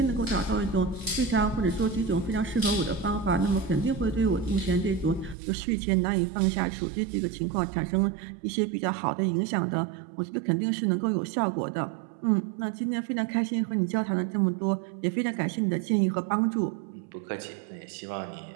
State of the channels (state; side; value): drops out; left; at 5.4 s